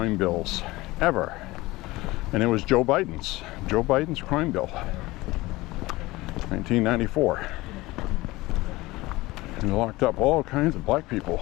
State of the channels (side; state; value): right; quieter; 20.0 dB